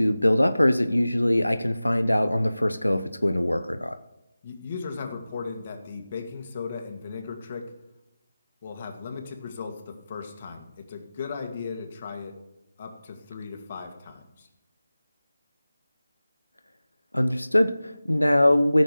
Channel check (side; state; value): both; inverted; correlation -0.97